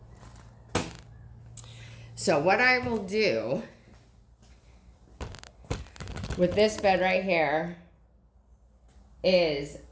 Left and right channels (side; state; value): both; identical; correlation 1.00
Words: So what I will do with this bed right here is